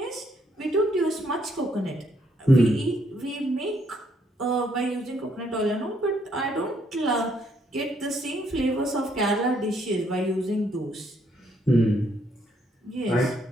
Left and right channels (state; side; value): normal; both; correlation 0.71